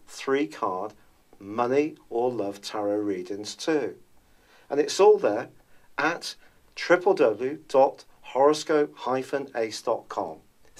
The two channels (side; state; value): both; identical; correlation 1.00